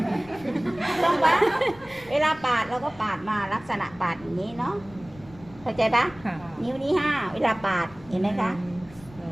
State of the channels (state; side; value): noise; left; rumble, 22 dB below the sound